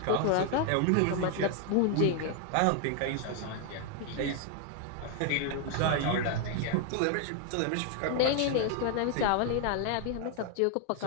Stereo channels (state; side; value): different; both; correlation 0.00